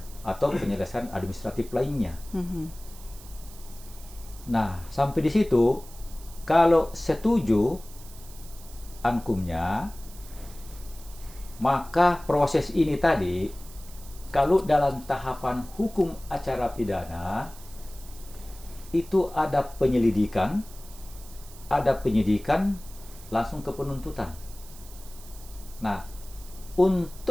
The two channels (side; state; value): right; noise; hiss, 19 dB below the sound